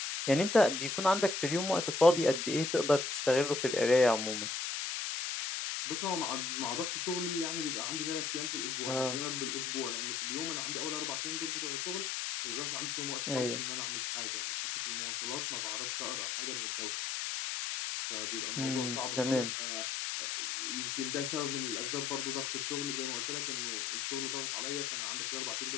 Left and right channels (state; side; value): noise; left; hiss, 2 dB below the sound